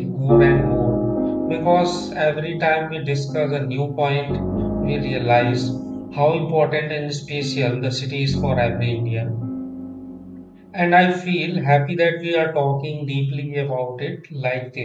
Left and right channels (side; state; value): both; identical; correlation 1.00